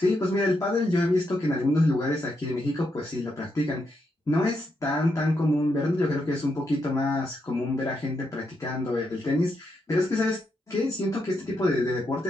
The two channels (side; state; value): both; normal; correlation 0.81